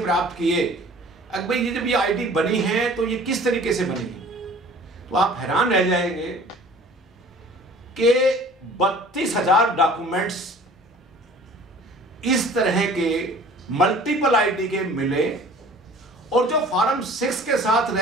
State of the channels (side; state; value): both; normal; correlation 0.47